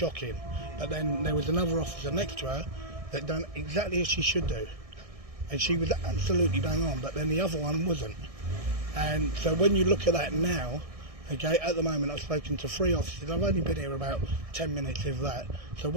But then there was another officer next to her that done exactly as she should do. And she was absolutely bang on, but then the other one wasn't. And so when you look at that now, okay, at the moment I've spoken to 3 officers. I've only been here about 10 minutes, if that. So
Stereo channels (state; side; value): late; left; 1.6 ms